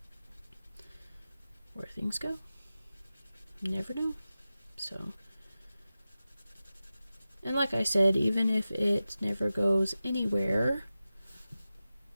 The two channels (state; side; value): inverted; both; correlation -0.94